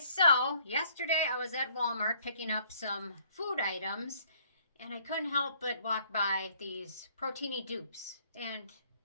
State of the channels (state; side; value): inverted; both; correlation -0.62